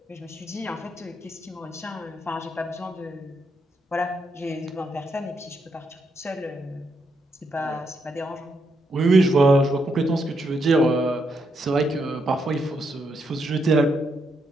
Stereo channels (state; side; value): normal; both; correlation 0.79